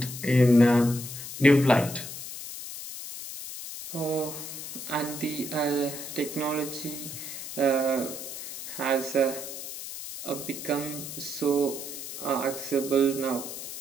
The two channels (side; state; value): left; noise; hiss, 9 dB below the sound